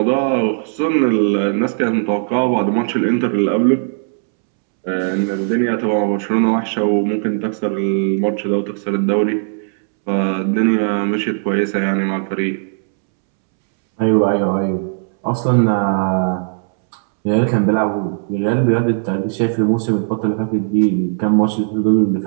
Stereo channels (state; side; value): silent; left; 67 dB below the other